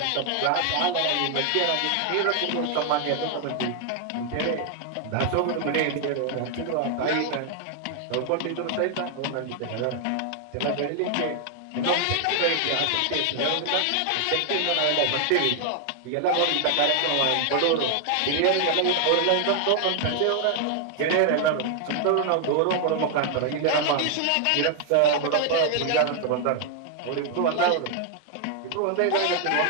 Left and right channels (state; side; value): different; both; correlation 0.00